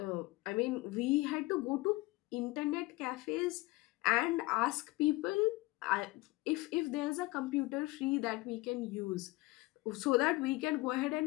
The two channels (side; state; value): right; quieter; 21.3 dB